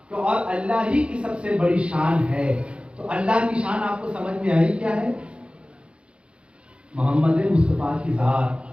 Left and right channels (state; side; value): late; left; 0.058 ms